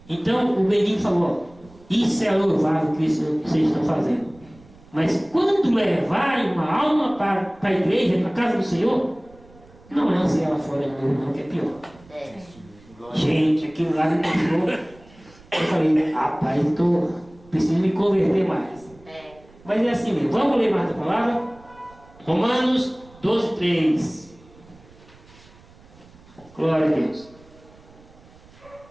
Então, o menino falou: isso é louvável que vocês estão fazendo. Mas quando levarem uma alma para a igreja, para a casa do Senhor, não lance ela fora de novo, não, que é pior. Gente, aquilo lá me deixou. Eu falei: rapaz, preciso me converter mais. Mas é assim mesmo. Vamos ler mais a palavra? Romanos 12:3. Glória a Deus.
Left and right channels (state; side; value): noise; right; rumble, 25 dB below the sound